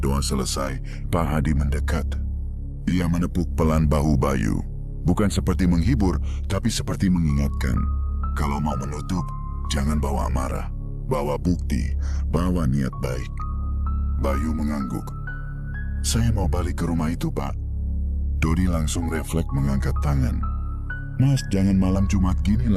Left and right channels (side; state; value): both; identical; correlation 1.00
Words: selesai, Pak Hadi mendekat. Ia menepuk pelan bahu Bayu. Bukan seperti menghibur, tapi seperti mengingatkan. Kalau mau menutup, jangan bawa amarah. Bawa bukti, bawa niat baik. Bayu mengangguk. Saya mau balik ke rumah itu, Pak. Dodi langsung refleks mengangkat tangan. Mas, jangan malam Jumat gini